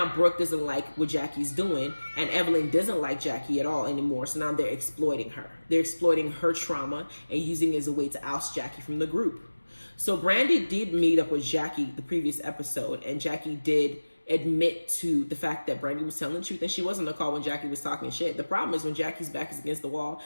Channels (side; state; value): both; inverted; correlation -1.00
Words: Brooke doesn't like what Jackie's doing, and Evelyn doesn't like Jackie at all anymore. So now they're exploiting her. They're exploiting her trauma and using it as a way to oust Jackie from the group. So Brandy did meet up with Jackie the previous episode, and Jackie did admit to the fact that Brandy was telling the truth, and she wasn't on the call when Jackie was talking shit. The problem is when Jackie's back is against the wall,